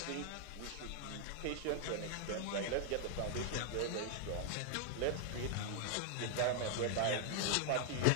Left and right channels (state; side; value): different; both; correlation 0.00